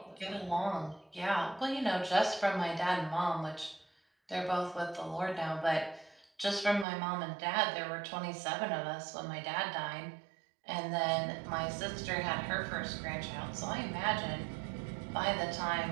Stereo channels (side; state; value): left; drops out; at 6.9 s